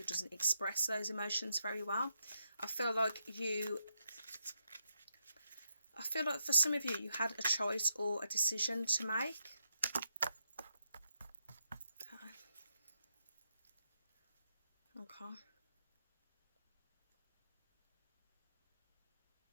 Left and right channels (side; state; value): both; inverted; correlation -0.81